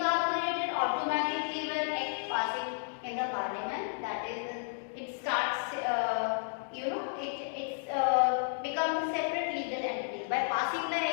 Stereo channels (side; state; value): right; silent; digital silence